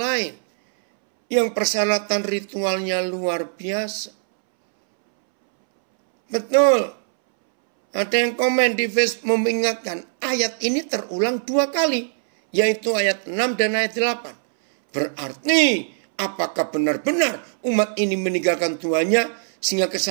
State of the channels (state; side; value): silent; left; 65 dB below the other